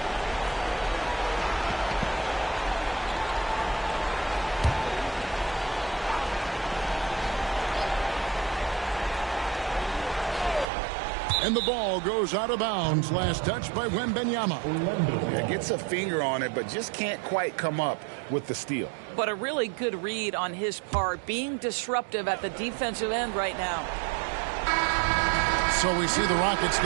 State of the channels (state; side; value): drops out; left; at 10.7 s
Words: And the ball goes out of bounds. Last touch by Wembanyama. Yeah, gets a finger on it, but just can't quite come up with the steal. But a really good read on his part, being disruptive at the defensive end right now. So we see the Rockets